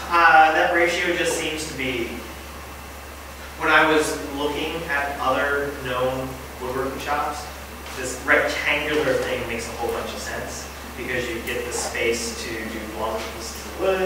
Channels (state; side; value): identical; both; correlation 1.00